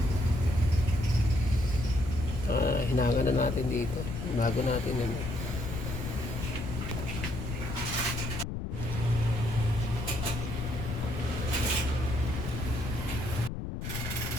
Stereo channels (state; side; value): noise; left; rumble, 5 dB below the sound